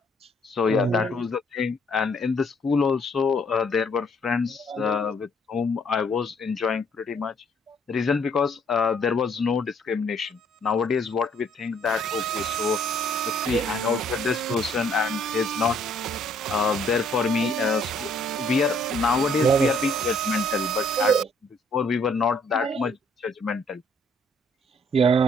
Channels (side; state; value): both; normal; correlation 0.64